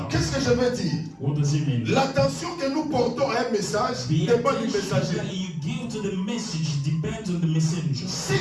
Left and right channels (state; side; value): identical; both; correlation 1.00